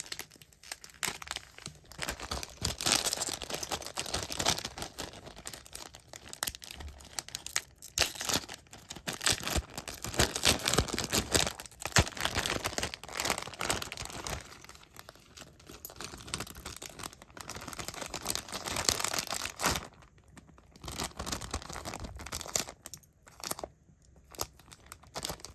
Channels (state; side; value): identical; both; correlation 1.00